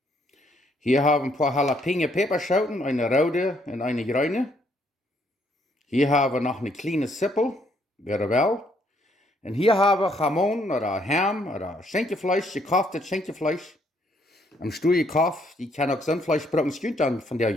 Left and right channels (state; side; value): normal; both; correlation 0.69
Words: Hier hebben we een paar jalapeno peperschoten, een rode en een groene. Hier hebben we nog een kleine sippel, weer wel. En hier hebben we gamon, oder ham, oder schenkjevlees, gekauftes schenkjevlees. Een stoeie kaf, die kan ook zandvlees gebruiken, schuurt dan van der